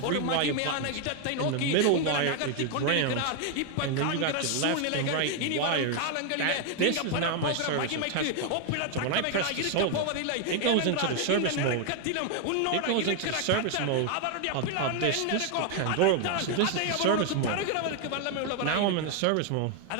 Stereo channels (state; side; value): different; both; correlation 0.01